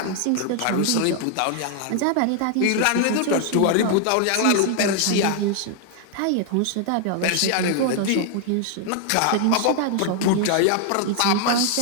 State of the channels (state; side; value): different; both; correlation 0.00